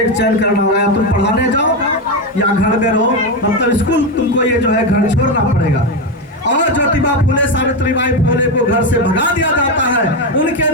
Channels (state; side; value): normal; both; correlation 0.11